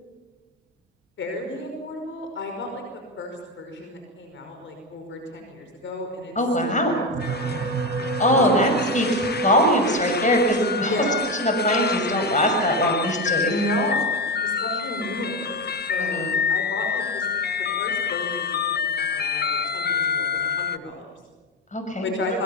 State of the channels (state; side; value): normal; both; correlation 0.15